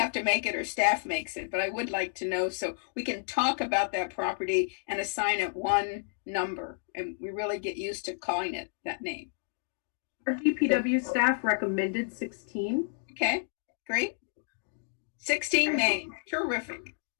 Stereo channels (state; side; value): silent; right; digital silence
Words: to make it or staff makes it. But I would like to know so we can talk about that property and assign it one number, and we really get used to calling it that name. Our DPW staff recommended 16. Okay, great. 16 name. Terrific.